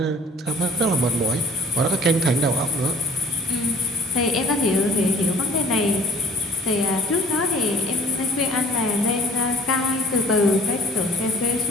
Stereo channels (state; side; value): normal; both; correlation 0.52